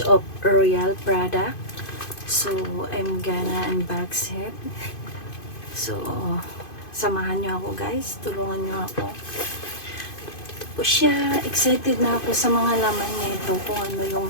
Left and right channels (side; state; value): right; late; 2.5 ms